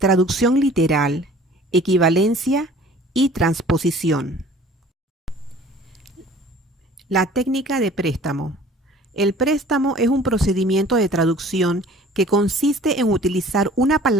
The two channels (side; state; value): both; normal; correlation 0.49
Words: literal, equivalencia y transposición. La técnica de préstamo. El préstamo es un procedimiento de traducción que consiste en utilizar una